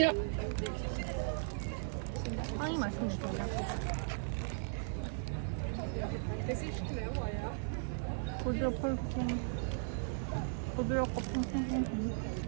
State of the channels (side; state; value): left; silent; digital silence